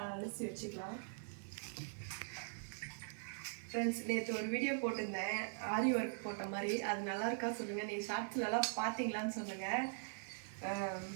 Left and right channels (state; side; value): silent; left; digital silence